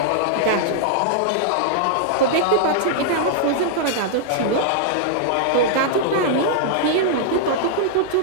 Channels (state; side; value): different; both; correlation -0.01